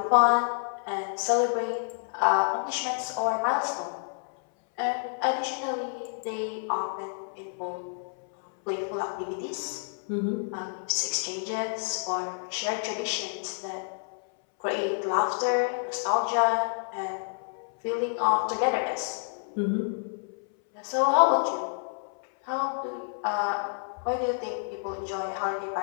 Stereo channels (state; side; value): silent; right; 59 dB below the other